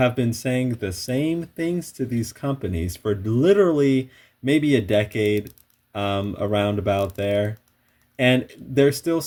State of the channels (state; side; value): identical; both; correlation 1.00